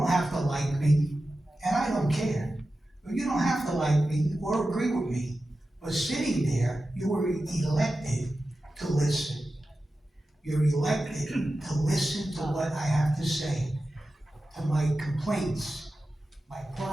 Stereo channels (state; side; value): normal; both; correlation 0.93